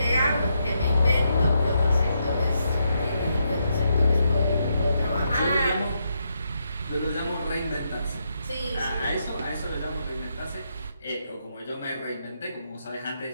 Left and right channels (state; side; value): inverted; both; correlation -0.80